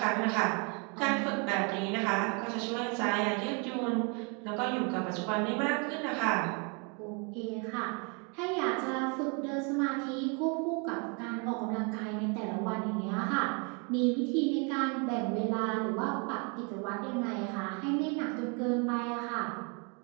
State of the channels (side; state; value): left; quieter; 34.4 dB